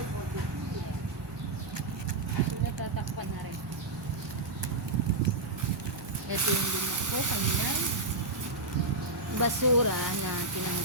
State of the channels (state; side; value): quieter; left; 3.0 dB